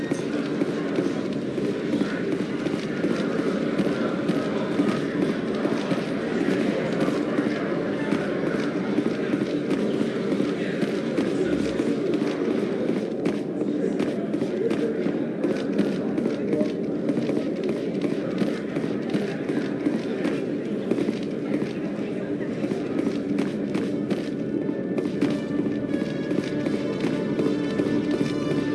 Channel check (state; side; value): identical; both; correlation 1.00